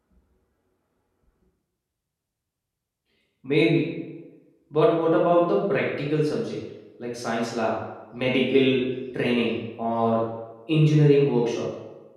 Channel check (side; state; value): both; identical; correlation 1.00